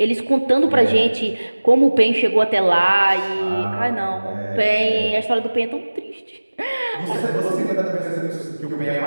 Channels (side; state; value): both; inverted; correlation -1.00